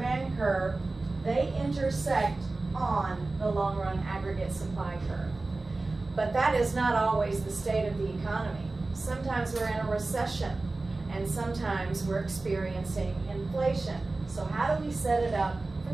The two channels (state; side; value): quieter; left; 3.3 dB